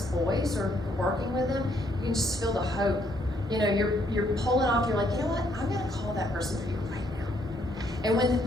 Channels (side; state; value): both; normal; correlation 0.70